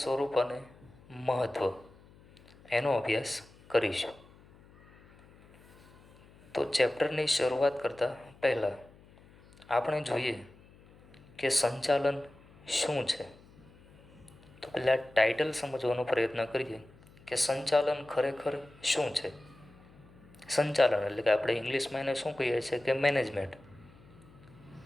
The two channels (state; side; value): noise; left; hum, 25 dB below the sound